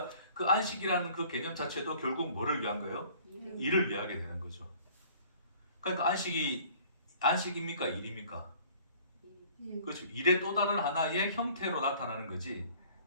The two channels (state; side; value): inverted; both; correlation -0.53